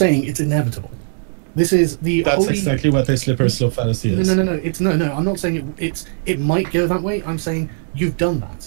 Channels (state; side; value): silent; left; digital silence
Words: it's inevitable. This is the That's exactly what a slippery slope fallacy is. No. I'm not saying it might go that way. I'm saying you've done